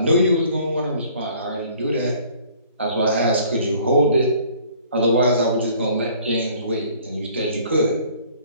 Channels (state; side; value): inverted; both; correlation -0.55